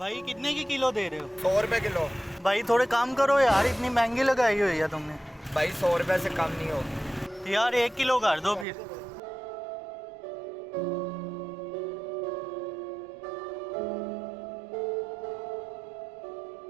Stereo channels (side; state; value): left; drops out; at 8.7 s